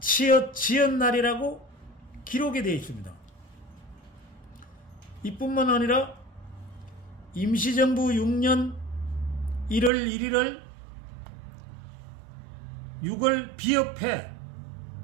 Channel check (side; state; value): left; drops out; at 9.9 s